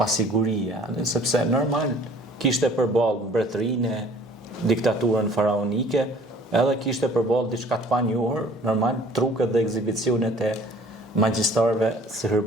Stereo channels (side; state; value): both; normal; correlation 0.52